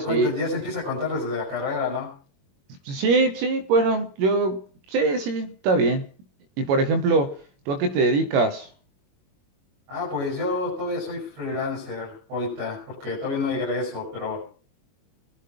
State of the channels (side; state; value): left; late; 21 ms